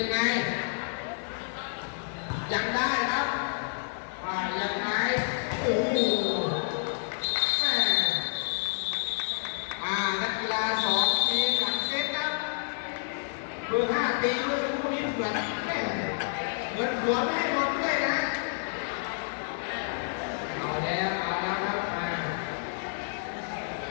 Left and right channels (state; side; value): silent; right; 58 dB below the other